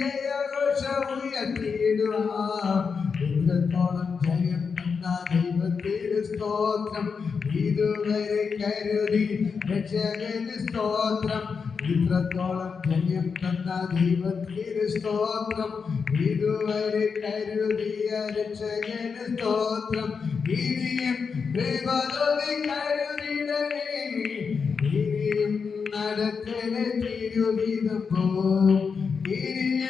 ഉയർത്തിടുവാൻ. ഇത്രത്തോളം ജയം തന്ന ദൈവത്തിന് സ്തോത്രം, ഇതുവരെ കരുതി രക്ഷകന് സ്തോത്രം. ഇത്രത്തോളം ജയം തന്ന ദൈവത്തിന് സ്തോത്രം, ഇതുവരെ കരുതിയ രക്ഷകന് സ്തോത്രം. ഇനിയും കൃപതോടെ കരുതിടണേ, ഇനിയും നടത്തണേ തിരു തിരുഗീതം പോ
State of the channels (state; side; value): quieter; right; 5.6 dB